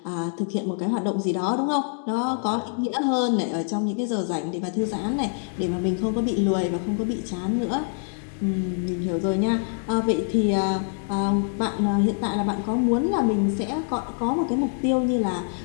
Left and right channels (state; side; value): silent; right; 62 dB below the other